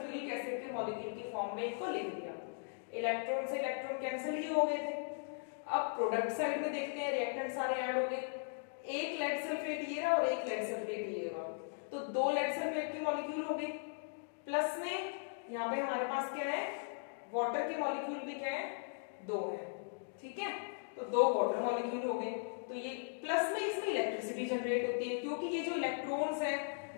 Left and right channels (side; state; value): right; silent; digital silence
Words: एसिड के मॉलिक्यूल की फॉर्म में इनको लिख दिया। इलेक्ट्रॉन से इलेक्ट्रॉन कैंसिल ही हो गए थे। अब प्रोडक्ट साइड में देखते हैं, रिएक्टेंट सारे ऐड हो गए, एक लेड सल्फेट ये रहा और एक लेड सल्फेट ये रहा, तो 2 लेड सल्फेट के मॉलिक्यूल हो गए, प्लस में यहाँ पे हमारे पास क्या है, वाटर के मॉलिक्यूल भी क्या है, 2 है, ठीक है। तो 2 वाटर मॉलिक्यूल हो गए, तो ये प्लस में इसमें इलेक्ट्रिसिटी जनरेट होती है, क्योंकि ये जो इलेक्ट्रॉन्स हैं